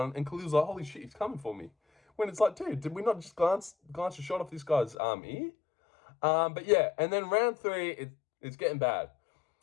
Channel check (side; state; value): right; drops out; at 5.0 s